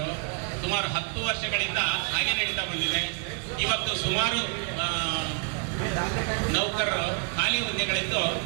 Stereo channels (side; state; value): left; quieter; 36.1 dB